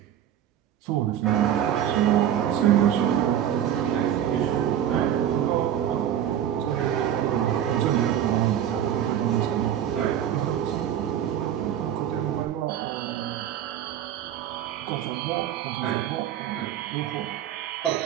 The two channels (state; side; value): quieter; left; 10.4 dB